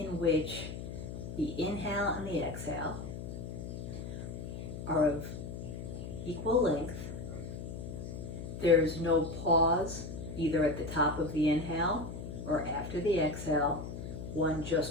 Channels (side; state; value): left; noise; hum, 8 dB below the sound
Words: which the inhale and the exhale are of equal length. There's no pause either at the top of the inhale or after the exhale. One